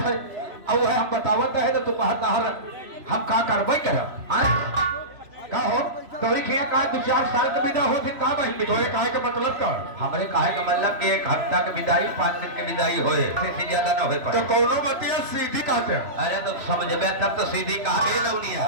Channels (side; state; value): left; late; 3.0 ms